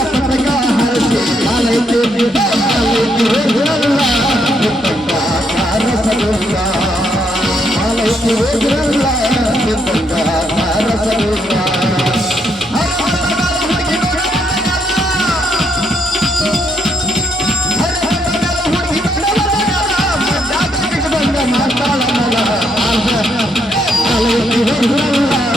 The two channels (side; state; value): both; normal; correlation 0.75